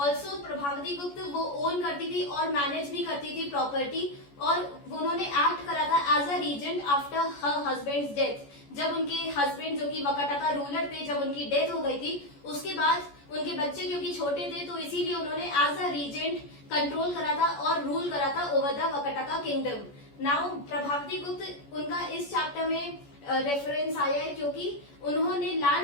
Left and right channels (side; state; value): right; late; 14 ms